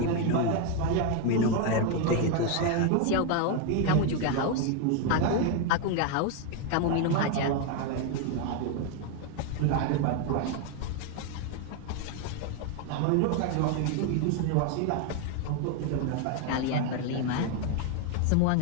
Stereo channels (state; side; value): different; both; correlation 0.01